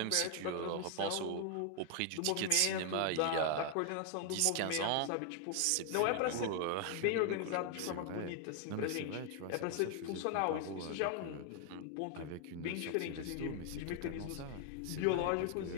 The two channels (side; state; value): both; different; correlation 0.00